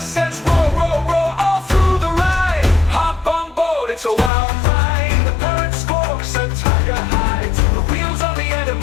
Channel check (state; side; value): drops out; right; at 4.3 s